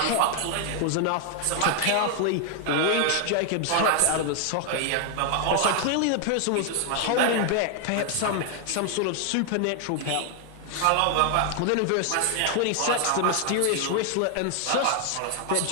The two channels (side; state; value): both; different; correlation 0.00